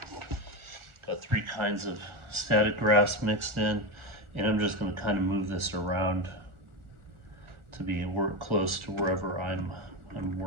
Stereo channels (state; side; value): late; left; 1.4 ms